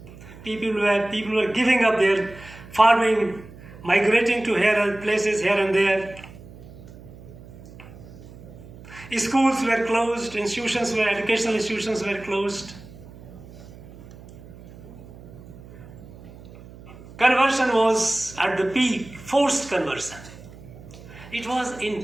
People were giving up their farming, migrating to places here and there. Schools were closed, educational institutions were closed. Conversion was at the peak, forced conversion. It was in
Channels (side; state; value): right; noise; hum, 18 dB below the sound